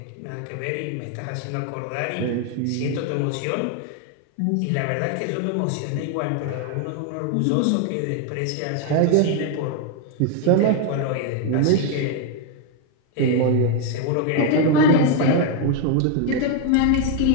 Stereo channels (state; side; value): different; both; correlation 0.01